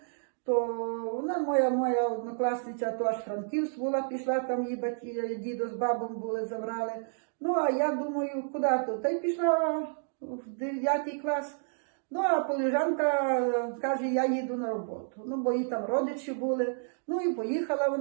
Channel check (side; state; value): left; silent; digital silence